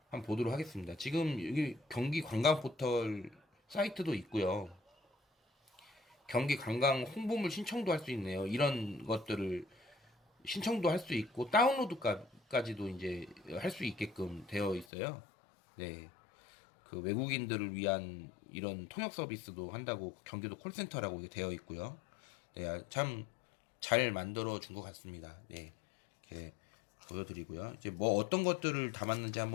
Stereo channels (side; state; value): right; drops out; at 14.9 s